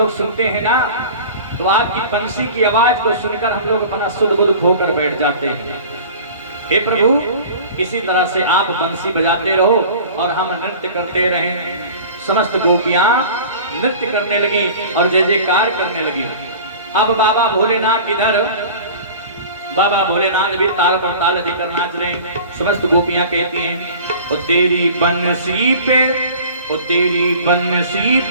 सुनते हैं ना तो आपकी बंसी की आवाज को सुनकर हम लोग अपना सुध बुध खोकर बैठ जाते हैं। हे प्रभु, इसी तरह से आप बंसी बजाते रहो और हम नृत्य करते रहें। समस्त गोपियां नृत्य करने लगी और जय जयकार करने लगी। अब बाबा भोलेनाथ इधर, बाबा भोलेनाथ भी ताल पर ताल देकर नाच रहे हैं। समस्त गोपियां कहती हैं, ओ तेरी बंसी पे, ओ तेरी बंसी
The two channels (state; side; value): inverted; both; correlation -0.41